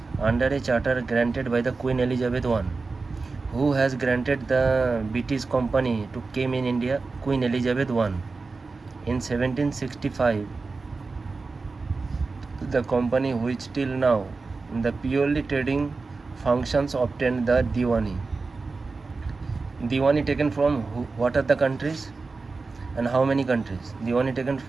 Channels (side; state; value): left; quieter; 4.0 dB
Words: under a charter granted by the Queen Elizabeth I. Who has granted the British Company to came in India? Queen Elizabeth I. In 1765, the company which till now the purely trading functions obtained the Diwani. Diwani taken from what are the countries and how many countries? Diwani taken